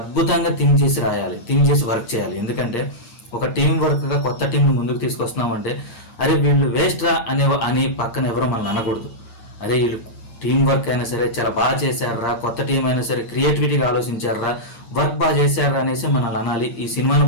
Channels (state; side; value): late; right; 9.6 ms